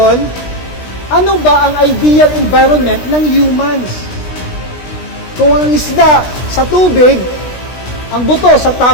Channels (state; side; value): late; right; 16 ms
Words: ano ba ang ideal environment ng humans? Kung ang isda sa tubig, ang buto sa